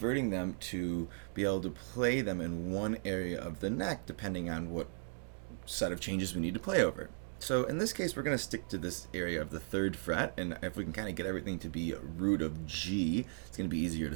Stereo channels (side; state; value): left; silent; digital silence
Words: them to be able to play them in one area of the neck, depending on what set of changes we need to play over. So in this case, we're going to stick to this area of the 3rd fret, and if we can kind of get everything to be a root of G, it's going to be easier